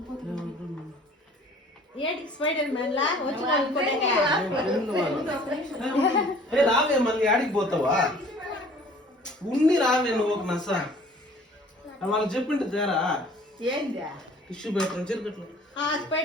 ఏంటి స్పైడర్ మ్యాన్ లా రావే మళ్ళీ ఆడికి పోతావా ఉన్ని రావే నువ్వు ఒక నస వాళ్ళకి చెప్పిండు తేరా ఏంది టిష్యూ పేపర్ చెరుకట్లు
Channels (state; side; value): normal; both; correlation 0.51